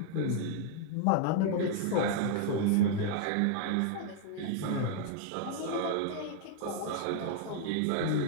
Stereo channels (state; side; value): different; both; correlation -0.01